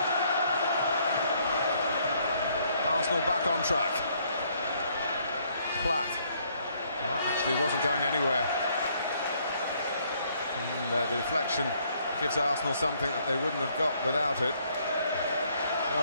Arsenal back on track. Platt. That actually wasn't going anywhere. And the deflection gives Arsenal something that they wouldn't have got without it.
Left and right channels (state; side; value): inverted; both; correlation -0.67